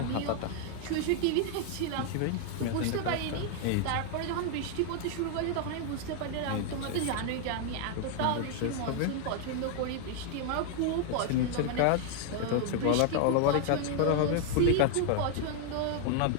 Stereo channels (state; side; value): different; both; correlation 0.00